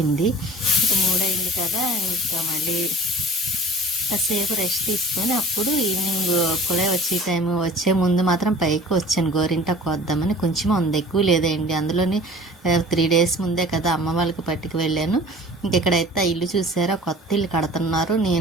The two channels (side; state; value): both; normal; correlation 0.45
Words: ఇంకా 3 అయింది కదా, ఇంకా మళ్ళీ కాసేపు రెస్ట్ తీసుకొని అప్పుడు ఈవినింగ్ కూడా వచ్చే ముందు మాత్రం పైకి వచ్చాను గోరింటాకు వద్దామని. కొంచెం ఉంది, ఎక్కువ లేదండి. అందులోని 3 days ముందే కదా అమ్మ వాళ్ళకి పట్టుకు వెళ్ళాను. ఇంకెక్కడైతే ఇల్లు చూసారా, కొత్త ఇల్లు కడుతున్నారు.